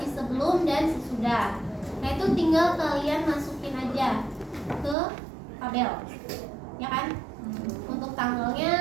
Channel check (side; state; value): left; drops out; at 5.0 s